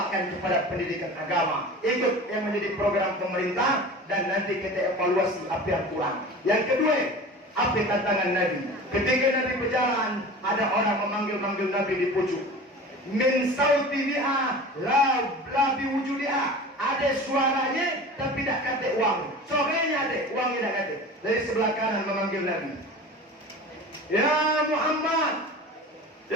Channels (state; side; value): normal; both; correlation 0.36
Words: kepada pendidikan agama. Ikut yang menjadi program pemerintah dan nanti kita evaluasi apa yang kurang. Yang kedua, apa tantangan Nabi? Ketika Nabi berjalan, ada orang memanggil-manggil Nabi di pucuk. Min sauti biha la biwujudiha. Ada suaranya tapi tak kata uang. Sorenya ada, uangnya tak kata. Dari sebelah kanan memanggil Nabi. Ya Muhammad.